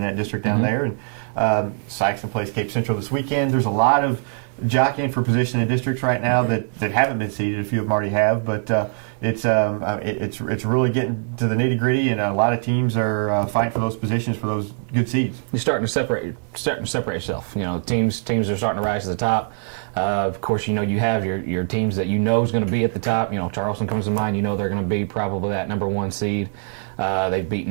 that district down there. And Sykeston plays Cape Central this weekend. There's a lot of jockeying for position in districts right now that haven't been seeded. A few of them already have, but it's really getting to the nitty gritty, and a lot of teams are fighting for those positions for those good seeds. You're starting to separate yourself. Teams are starting to rise to the top. Of course, you have your teams that is going to be at the top. Charleston comes to mind. They're going to be probably that number one seed. They've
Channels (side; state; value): left; silent; 64 dB below the other